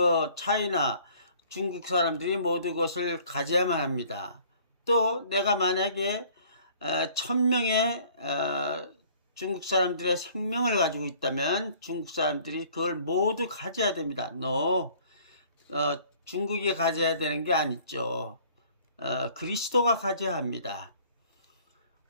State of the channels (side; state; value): both; inverted; correlation -0.55